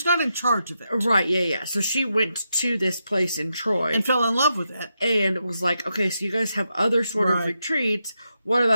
not in charge of it. Right, yeah. So she went to this place in Troy. And fell in love with it. And was like, okay, so you guys have other sort of retreats. What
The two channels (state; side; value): inverted; both; correlation -0.85